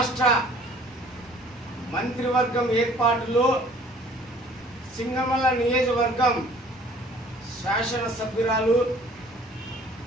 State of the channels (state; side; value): normal; both; correlation 0.53